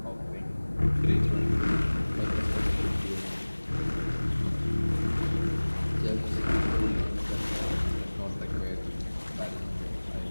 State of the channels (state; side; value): inverted; both; correlation -1.00